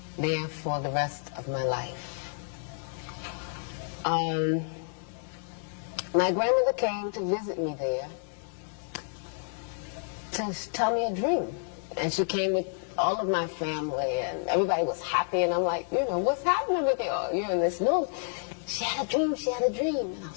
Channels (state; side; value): silent; right; 58 dB below the other